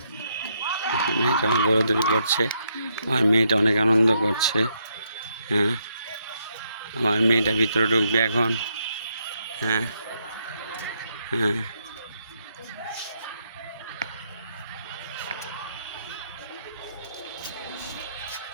মেয়েটা আমার দৌড়াদৌড়ি করছে, আমার মেয়েটা অনেক আনন্দ করছে। হ্যাঁ, আমার মেয়েটা ভিতরে ঢুকবে এখন। হ্যাঁ হ্যাঁ,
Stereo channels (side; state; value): both; inverted; correlation -0.77